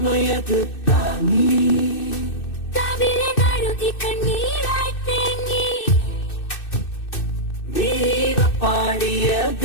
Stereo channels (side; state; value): right; late; 2.6 ms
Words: താങ്ങി കവിളെ കഴുകി കണ്ണീരായി തേങ്ങി വീര പാടിയ